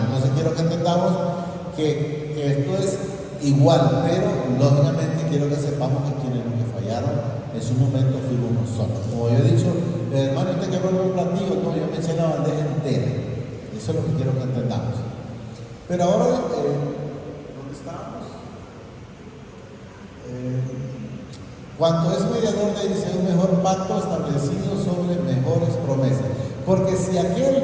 Entonces quiero que entendamos que esto es igual, pero lógicamente quiero que sepamos que quienes nos fallaron en su momento fuimos nosotros. Como yo he dicho, hermano, usted que vuelve un platillo, no, yo me eché la bandeja entera. Eso es lo que quiero que entendamos. Pero ahora, ¿dónde estamos? Cuanto es mediador de, dice, un mejor pacto establecido sobre mejores promesas. Porque si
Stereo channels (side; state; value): both; identical; correlation 1.00